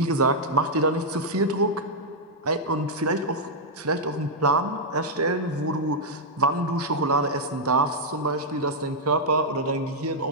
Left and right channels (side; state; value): both; normal; correlation -0.04